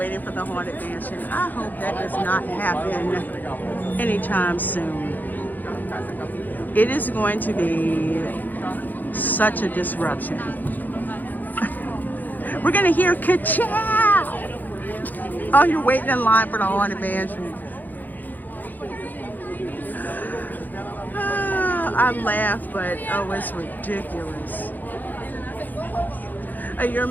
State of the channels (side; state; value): right; late; 0.085 ms